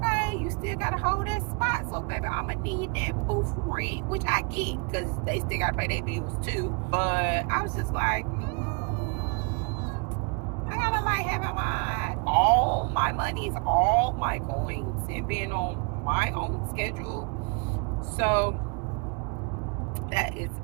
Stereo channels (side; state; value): left; quieter; 35.0 dB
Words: you still gotta hold that spot, so baby, I'ma need that booth rent, which I get because they still gotta pay their bills too. But I was just like, I gotta like having all my monies, all my coins, and being on my own schedule So that is